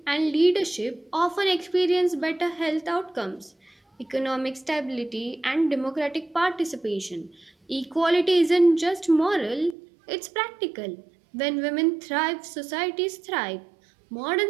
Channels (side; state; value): left; drops out; at 9.8 s